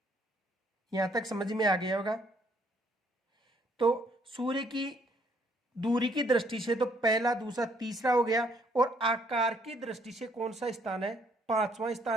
यहां तक समझ में आ गया होगा। तो सूर्य की दूरी की दृष्टि से तो पहला, दूसरा, तीसरा हो गया, और आकार की दृष्टि से कौन सा स्थान है, पांचवा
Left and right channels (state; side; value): normal; both; correlation 0.66